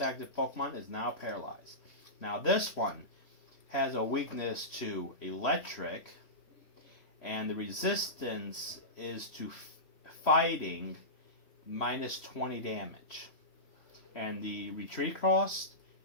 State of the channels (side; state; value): right; late; 3.0 ms